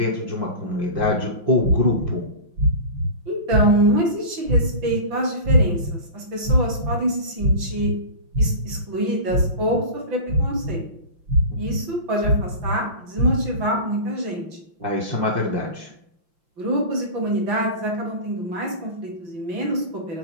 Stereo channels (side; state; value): left; late; 5.8 ms